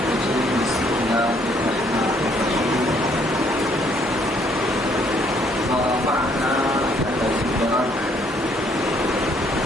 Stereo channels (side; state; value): both; normal; correlation 0.66